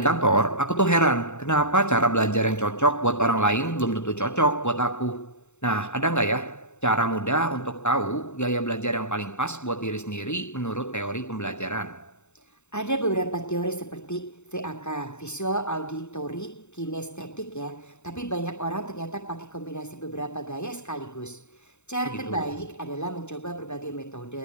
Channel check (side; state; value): right; late; 0.83 ms